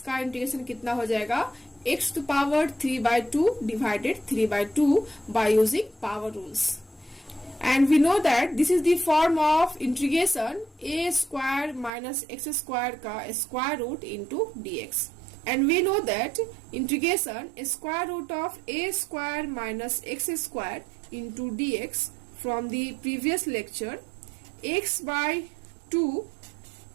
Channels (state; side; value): drops out; left; at 11.9 s